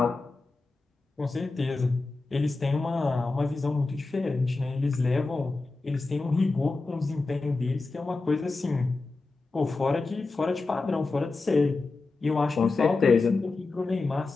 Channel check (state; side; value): quieter; right; 3.6 dB